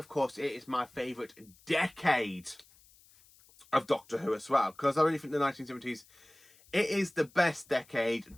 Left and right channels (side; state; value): left; noise; hiss, 27 dB below the sound